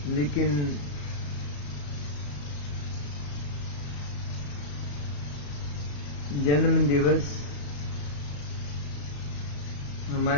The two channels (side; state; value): right; late; 34 ms